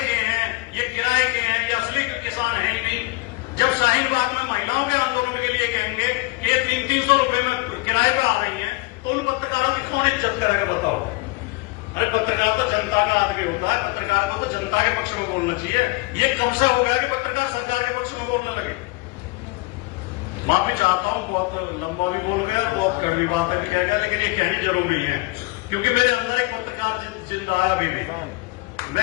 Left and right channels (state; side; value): quieter; right; 23.0 dB